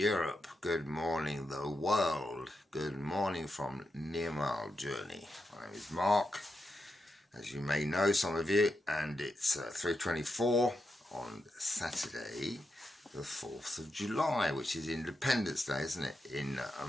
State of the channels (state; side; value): normal; both; correlation 0.86